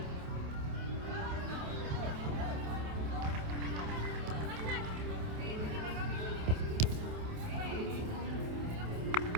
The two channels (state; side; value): late; left; 28 ms